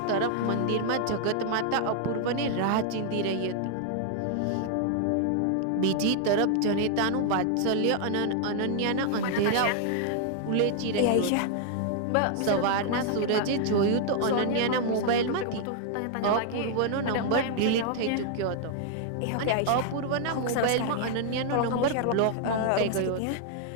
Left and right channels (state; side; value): different; both; correlation 0.00